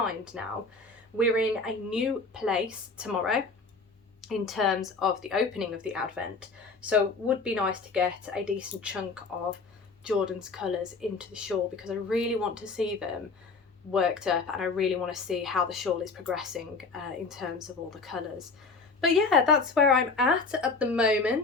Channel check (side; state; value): right; quieter; 4.1 dB